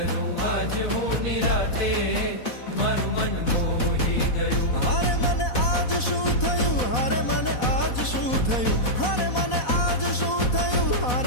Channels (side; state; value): right; late; 4.1 ms